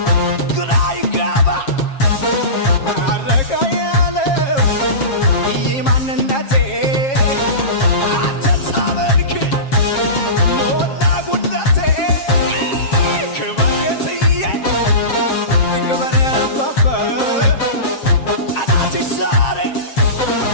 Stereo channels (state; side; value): late; right; 7.4 ms